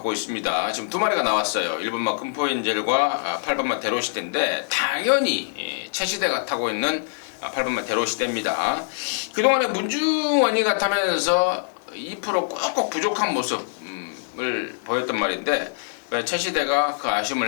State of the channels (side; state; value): right; silent; digital silence